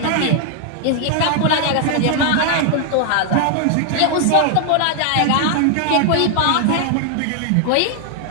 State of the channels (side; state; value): both; different; correlation 0.00